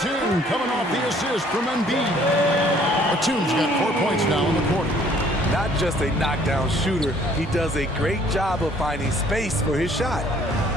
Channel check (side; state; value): both; normal; correlation 0.59